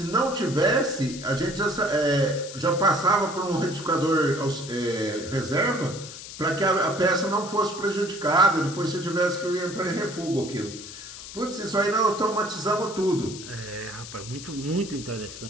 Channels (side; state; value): left; noise; hiss, 12 dB below the sound